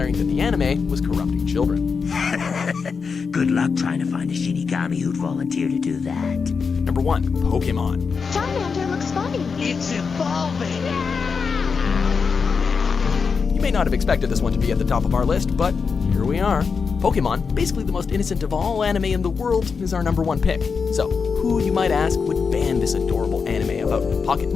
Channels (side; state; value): right; quieter; 5.4 dB